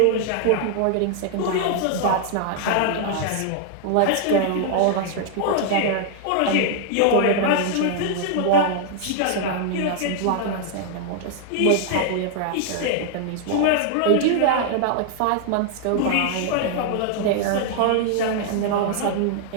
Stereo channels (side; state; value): both; different; correlation -0.01